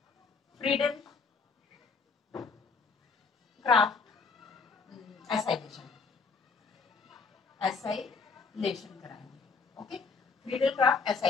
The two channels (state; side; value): quieter; right; 4.9 dB